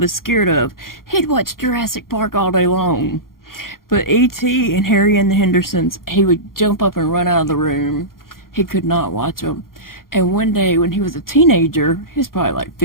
scared of. He'd watch Jurassic Park all day long. But E.T. and Harry and the Hendersons, he would jump up and run out of the room. He could not watch them. And one day when he was a teenager, he was probably like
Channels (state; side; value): late; right; 0.92 ms